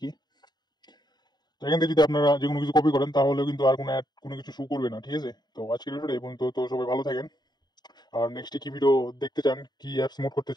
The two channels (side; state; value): right; late; 0.20 ms